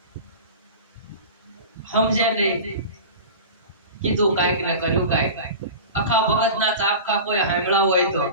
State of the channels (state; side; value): inverted; both; correlation -0.33